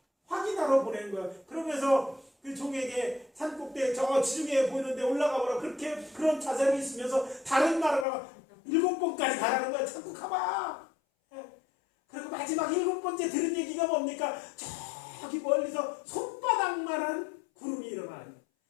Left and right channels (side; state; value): right; drops out; at 8.1 s